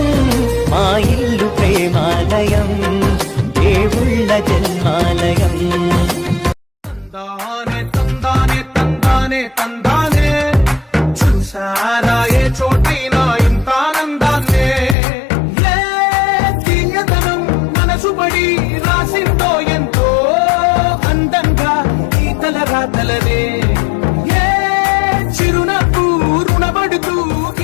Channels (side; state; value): right; drops out; at 15.0 s